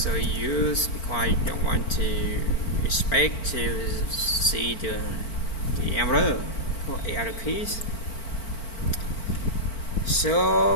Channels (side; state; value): right; late; 4.4 ms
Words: you because I don't want to expect to see the error for error keys.